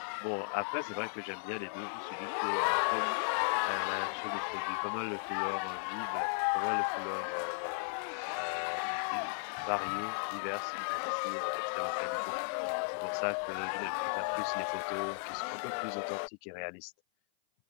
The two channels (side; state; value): right; silent; 54 dB below the other